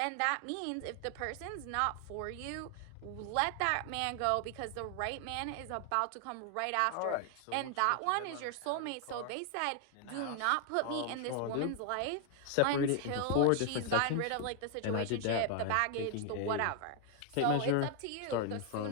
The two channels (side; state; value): both; different; correlation 0.00